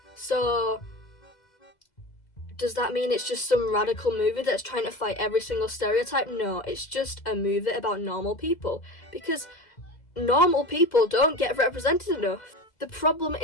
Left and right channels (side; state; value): right; late; 2.0 ms